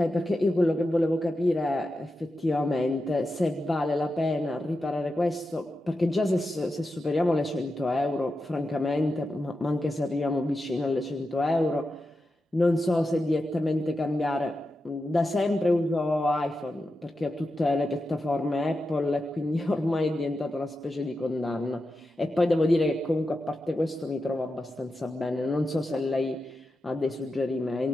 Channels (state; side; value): normal; both; correlation 0.90